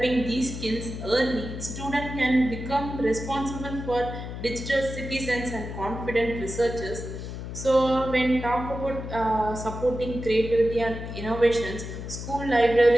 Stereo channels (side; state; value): left; noise; hum, 8 dB below the sound